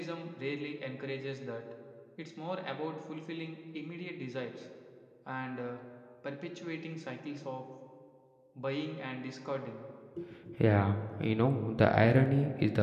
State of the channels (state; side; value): identical; both; correlation 1.00